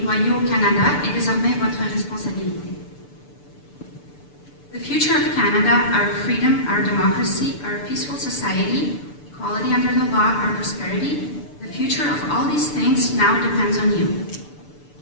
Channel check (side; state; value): right; late; 6.8 ms